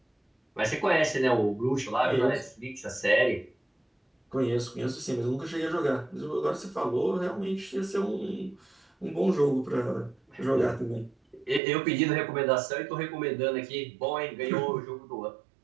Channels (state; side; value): drops out; left; at 11.6 s